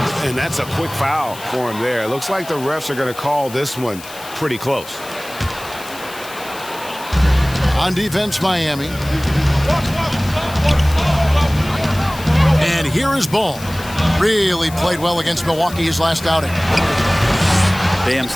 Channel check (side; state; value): left; noise; hiss, 16 dB below the sound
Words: And that's a quick foul for him there. It looks like the refs are going to call this one pretty close. On defense, Miami. And here is Ball. Really played well against Milwaukee his last outing. Bam's